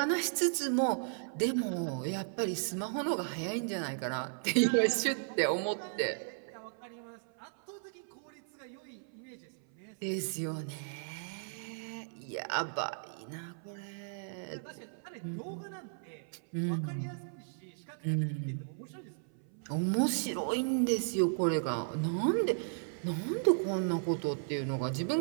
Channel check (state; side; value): silent; left; 54 dB below the other